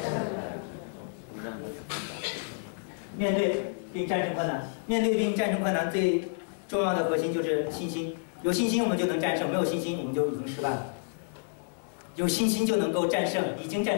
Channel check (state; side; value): silent; right; 57 dB below the other